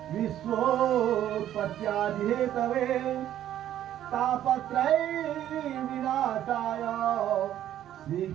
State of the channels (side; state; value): left; quieter; 11.7 dB